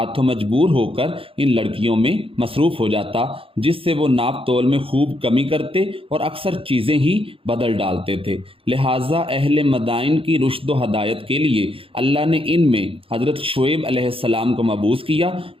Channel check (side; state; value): left; late; 0.27 ms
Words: مجبور ہو کر ان لڑکیوں میں مصروف ہو جاتا، جس سے وہ ناپ تول میں خوب کمی کرتے اور اکثر چیزیں ہی بدل ڈالتے تھے۔ لہٰذا اہل مدائن کی رشد و ہدایت کے لیے اللہ نے ان میں حضرت شعیب علیہ السلام کو مبعوث کیا،